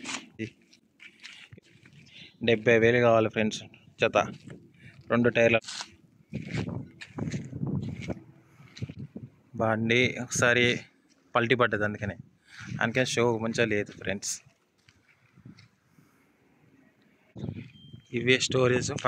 70,000 కావాలి ఫ్రెండ్స్ జత 2 టైర్ల బండి. ఒకసారి పల్టీ పడ్డది, అందుకని షో మంచిగా లేదు ఫ్రెండ్స్. ఇవే స్టోరేజ్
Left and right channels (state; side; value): identical; both; correlation 1.00